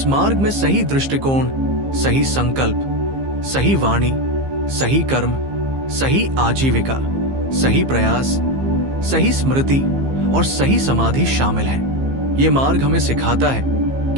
मार्ग में सही दृष्टिकोण, सही संकल्प, सही वाणी, सही कर्म, सही आजीविका, सही प्रयास, सही स्मृति और सही समाधि शामिल है। ये मार्ग हमें सिखाता है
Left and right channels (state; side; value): late; left; 15 ms